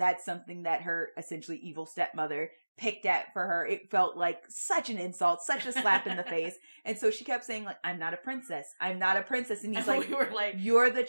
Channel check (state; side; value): inverted; both; correlation -1.00